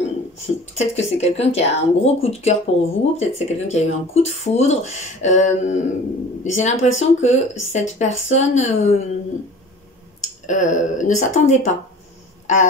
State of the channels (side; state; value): both; normal; correlation 0.43